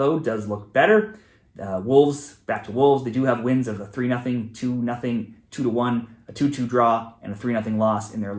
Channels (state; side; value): identical; both; correlation 1.00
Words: does look better. Wolves, back to Wolves, they do have wins of a 3-0, 2-0, 2-1, a 2-2 draw, and a 3-0 loss in their